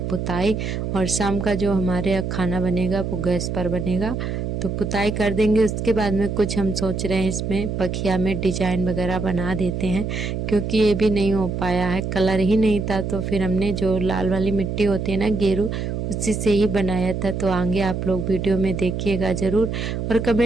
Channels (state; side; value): noise; right; hum, 3 dB below the sound